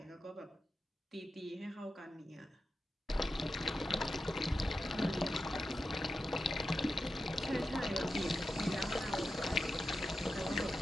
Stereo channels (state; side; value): normal; both; correlation 0.90